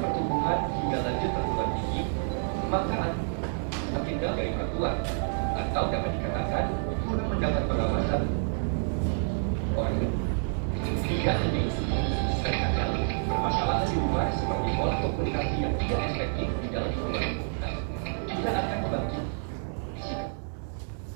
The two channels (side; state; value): left; silent; digital silence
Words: hingga lanjut perguruan tinggi, maka anak semakin jauh dari orang tua, atau dapat dikatakan kurang mendapat pengawasan orang tua. Hingga ini terkadang permasalahan di luar seperti pola komunikasi yang tidak efektif di dalam lingkungan juga akan membantu